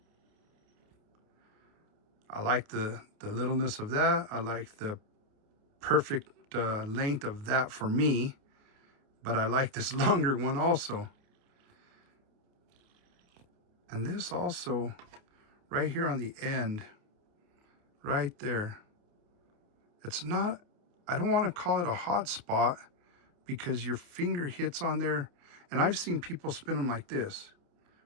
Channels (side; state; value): left; late; 28 ms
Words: I like the littleness of that. I like the perfect length of that for me. But I like this longer one also. And this also right here on the end, right there. It's not, I don't want to call it a hot spot because your finger hits on there. And I've seen people spin them like this,